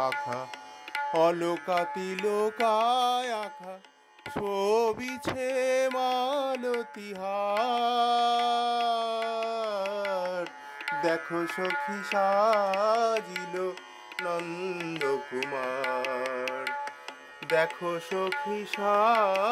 অলকা তিলকায় আঁখা, শোভিছে মালতীহার। দেখো সখী সাজিল নন্দকুমার, দেখো সখী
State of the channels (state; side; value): identical; both; correlation 1.00